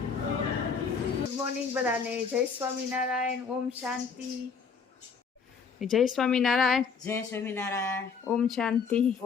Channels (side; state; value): right; quieter; 5.7 dB